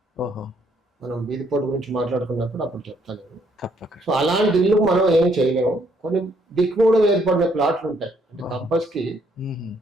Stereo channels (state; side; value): normal; both; correlation 0.69